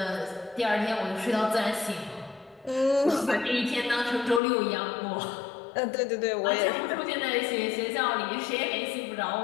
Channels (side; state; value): right; drops out; at 4.4 s